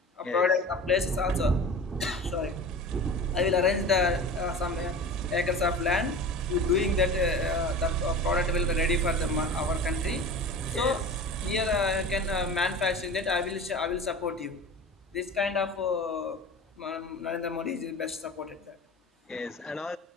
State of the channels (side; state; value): both; normal; correlation 0.35